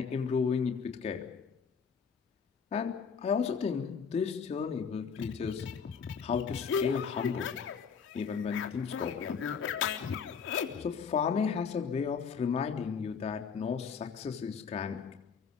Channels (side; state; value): right; quieter; 6.2 dB